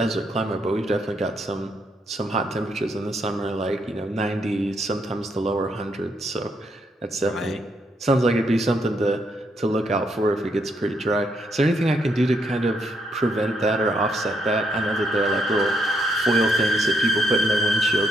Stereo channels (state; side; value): normal; both; correlation 0.76